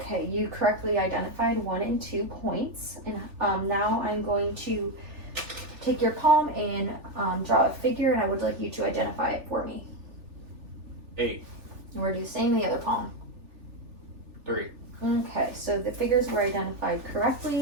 you correctly identified 1 and 2 points. And now I'm going to take your palm and draw a figure, and I would like you to identify it for me. 8. And we're going to do the same in the other palm. 3. Okay, so the figures were identified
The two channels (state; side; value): late; left; 3.4 ms